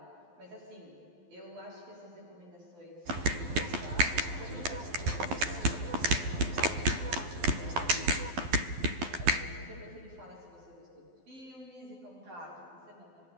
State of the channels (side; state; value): left; late; 12 ms